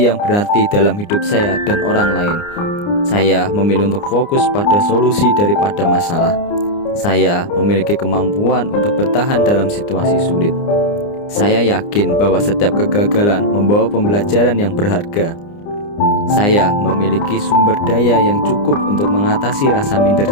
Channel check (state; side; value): late; right; 29 ms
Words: yang berarti dalam hidup saya dan orang lain. Saya memilih untuk fokus pada solusi daripada masalah. Saya memiliki kemampuan untuk bertahan dalam situasi sulit. Saya yakin bahwa setiap kegagalan membawa pembelajaran yang berharga. Saya memiliki sumber daya yang cukup untuk mengatasi rasa